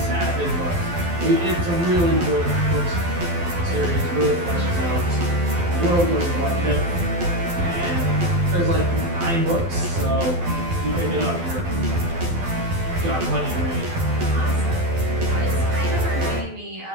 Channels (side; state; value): left; late; 12 ms